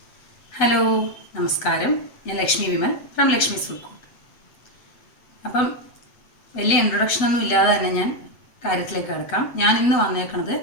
ഹലോ, നമസ്കാരം. ഞാൻ Lakshmi Vimal from Lakshmi's food court. അപ്പം വലിയ ഇൻട്രൊഡക്ഷനൊന്നും ഇല്ലാതെ തന്നെ ഞാൻ കാര്യത്തിലേക്ക് കിടക്കാം. ഞാൻ ഇന്ന് വന്നേക്കണത്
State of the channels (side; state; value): right; late; 8.0 ms